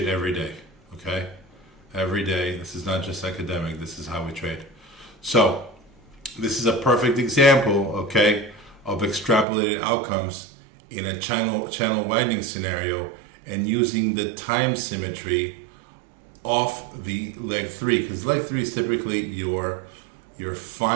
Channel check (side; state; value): left; drops out; at 9.5 s